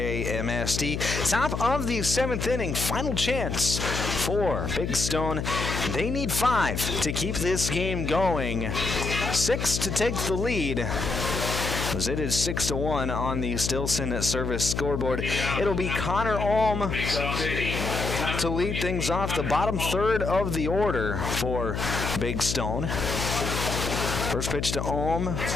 Top of the 7th inning, final chance for Big Stone. They need 5 to keep this game going. 6 to take the lead, as it is 6-1 on the Stilson service scoreboard. It'll be Connor Alm to lead things off, the bottom third of the order for Big Stone. First pitch to Ohm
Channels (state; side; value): noise; left; hum, 3 dB below the sound